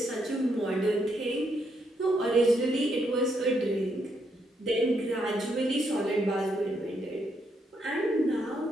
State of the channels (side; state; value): both; normal; correlation 0.76